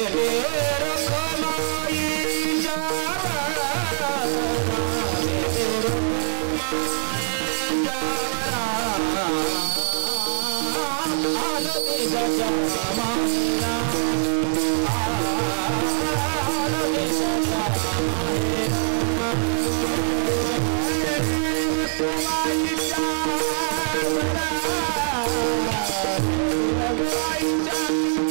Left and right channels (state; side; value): silent; left; digital silence